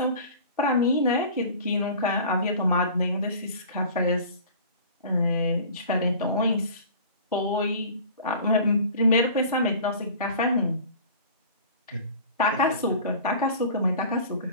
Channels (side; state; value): both; inverted; correlation -0.41